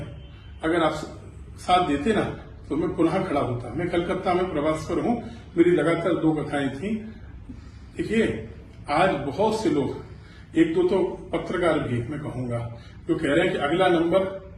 अगर आप साथ देते ना तो मैं पुनः खड़ा होता। मैं कलकत्ता में प्रवास पर हूं, मेरी लगातार 2 कथाएं थी। देखिए, आज बहुत से लोग, 1-2 तो पत्रकार भी मैं कहूंगा, जो कह रहे हैं कि अगला नंबर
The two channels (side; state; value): both; identical; correlation 1.00